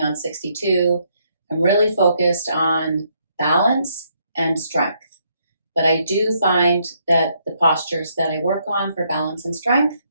on 62, I'm really focused on balance and strength. But I do find that the postures that I work on for balance and strength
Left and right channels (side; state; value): both; inverted; correlation -0.73